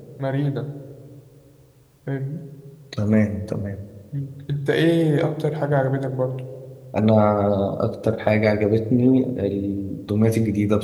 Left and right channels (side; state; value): both; identical; correlation 1.00